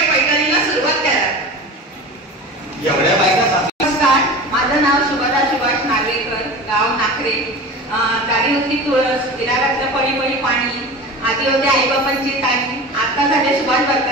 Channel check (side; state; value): both; normal; correlation 0.33